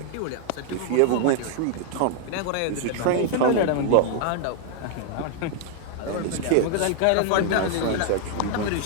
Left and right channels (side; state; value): both; different; correlation 0.00